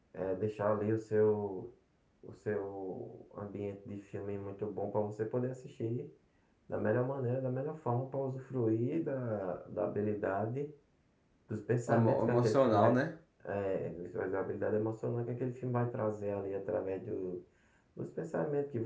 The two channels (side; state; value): both; identical; correlation 1.00